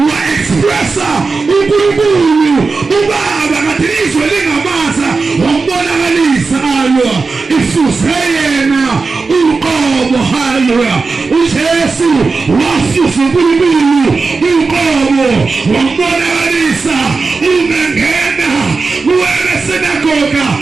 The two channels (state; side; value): quieter; left; 4.3 dB